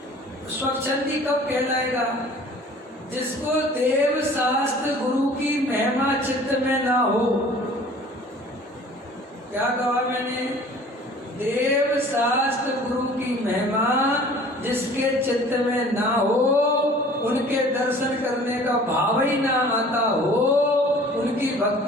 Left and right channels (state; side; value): normal; both; correlation 0.48